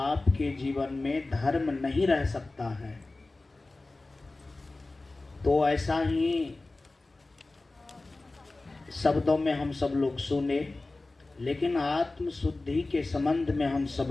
जीवन में धर्म नहीं रह सकता है। तो ऐसा ही शब्दों में हम सब लोग सुने, लेकिन आत्मशुद्धि के संबंध में हम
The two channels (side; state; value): right; quieter; 3.2 dB